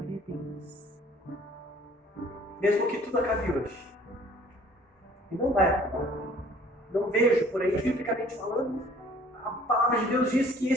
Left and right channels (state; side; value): normal; both; correlation 0.54